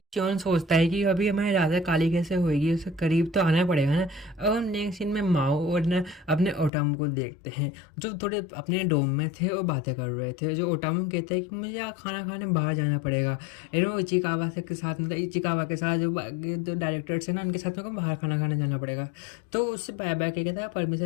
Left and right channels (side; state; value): right; drops out; at 6.7 s